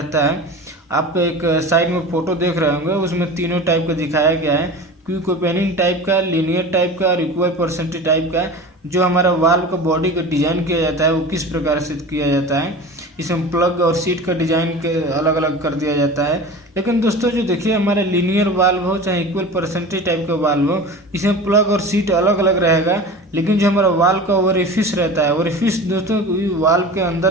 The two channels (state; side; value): normal; both; correlation 0.34